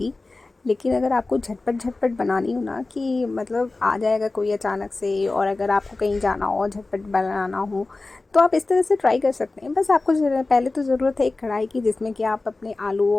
लेकिन अगर आपको झटपट झटपट बनानी हो ना कि मतलब आ जाएगा कोई अचानक से, और अगर आपको कहीं जाना हो झटपट बनाना हो तो आप इस तरह से ट्राई कर सकते हैं। बस आपको पहले तो ज़रूरत है एक कढ़ाई की, जिसमें कि आप अपने आलू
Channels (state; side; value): quieter; right; 3.3 dB